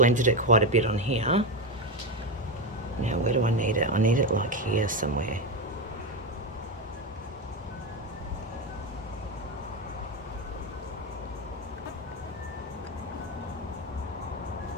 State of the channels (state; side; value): normal; both; correlation 0.14